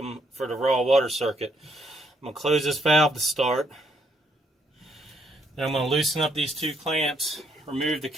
for the raw water circuit. I'm going to close this valve to start. Then I'm going to loosen up these two clamps, remove the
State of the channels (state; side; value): normal; both; correlation 0.71